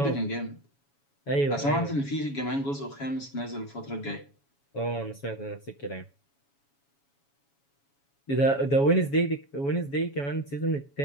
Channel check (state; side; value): late; right; 7.2 ms